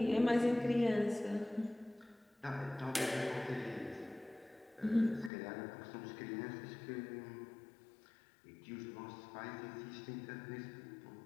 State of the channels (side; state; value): right; drops out; at 5.3 s